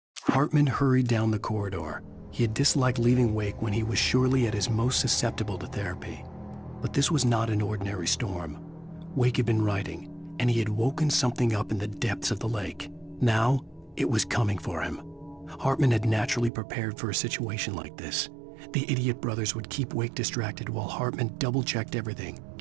Hartman hurried down the corridor. He had disliked leaving Wake when he was surely at his most susceptible to therapy. But this was not an ordinary storm. Wake had been writing, and he had woken something up in the depths of the lake. Now, it was coming for him. Hartman had naturally prepared for a situation like this. The idiot brothers would keep Wake distracted while Hartman double-checked everything,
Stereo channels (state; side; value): drops out; left; at 16.5 s